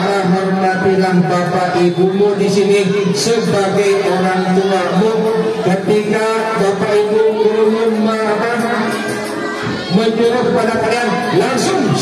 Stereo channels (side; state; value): both; identical; correlation 1.00